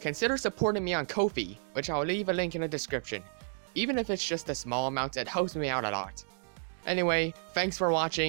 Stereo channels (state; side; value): silent; left; digital silence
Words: supporting me on Kofi, which I'll leave a link in the description. Even if it's just a small amount, it helps me out a lot. Anyway, thanks for